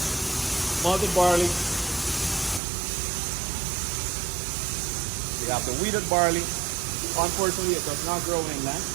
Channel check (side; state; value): left; drops out; at 2.6 s